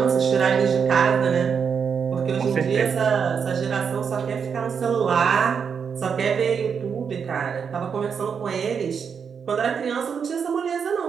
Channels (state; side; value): quieter; left; 6.6 dB